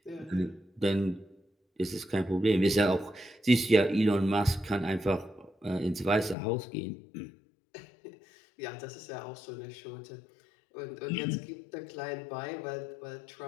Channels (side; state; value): right; drops out; at 6.4 s